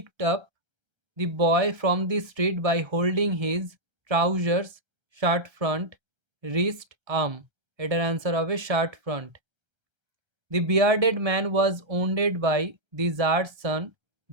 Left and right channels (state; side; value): late; left; 1.3 ms